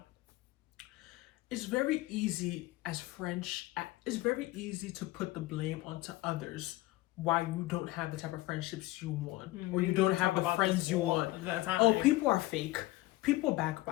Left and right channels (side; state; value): right; quieter; 18.7 dB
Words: it's very easy it's very easy to put the blame onto others why you don't have the type of friendships you want, or you don't have the friends you want. Oh, people are fake. People